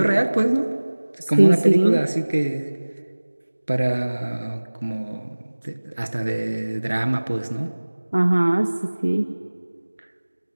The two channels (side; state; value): both; inverted; correlation -1.00